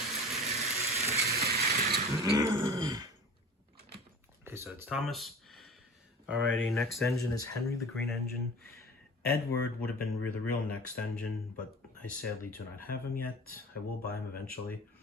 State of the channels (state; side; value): normal; both; correlation 0.38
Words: Okay, so it's Thomas. Alrighty, next engine is Henry the Green Engine. Edward would have been the real next engine, but I sadly do not have him yet. I will buy him eventually.